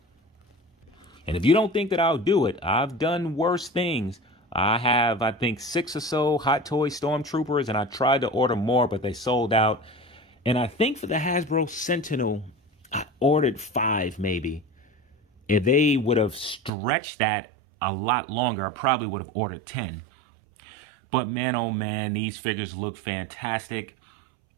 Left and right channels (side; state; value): left; drops out; at 16.7 s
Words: And if you don't think that I'll do it, I've done worse things. I have, I think, 6 or so Hot Toy Stormtroopers, and I tried to order more, but they sold out. And I think for the Hasbro Sentinel, I ordered 5 maybe. If they would have stretched that a lot longer, I probably would have ordered 10. But man, oh man, these figures look fantastic.